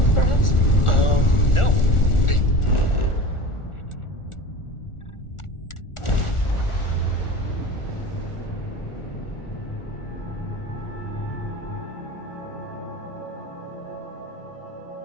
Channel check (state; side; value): late; right; 1.4 ms